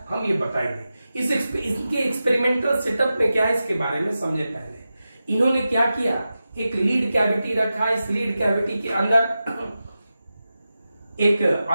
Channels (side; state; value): both; inverted; correlation -0.92